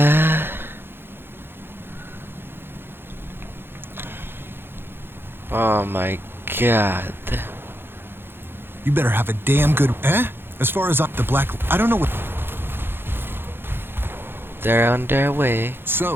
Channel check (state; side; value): late; left; 0.10 ms